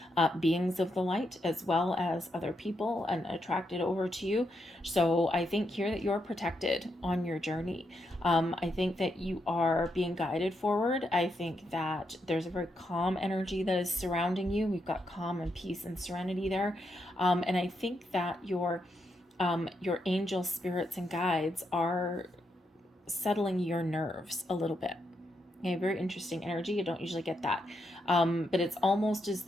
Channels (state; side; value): normal; both; correlation 0.81